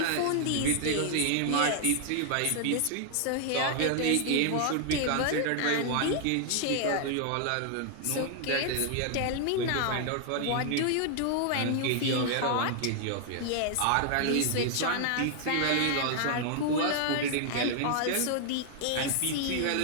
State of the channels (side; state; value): both; different; correlation 0.00